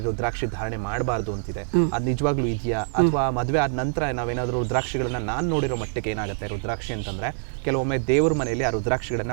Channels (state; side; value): silent; left; digital silence